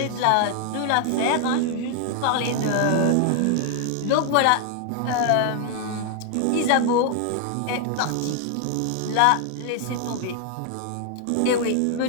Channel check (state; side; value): different; both; correlation 0.00